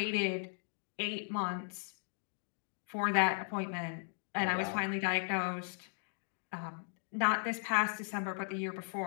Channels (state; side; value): silent; right; digital silence